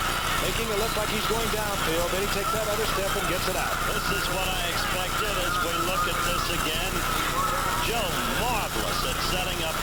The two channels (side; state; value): both; identical; correlation 1.00